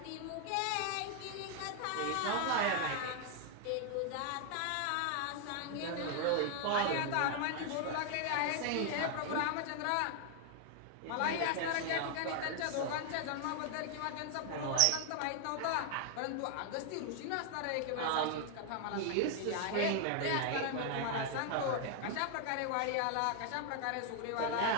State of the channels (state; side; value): different; both; correlation 0.00